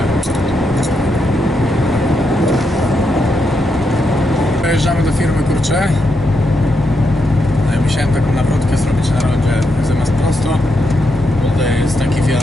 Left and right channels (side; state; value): both; normal; correlation 0.82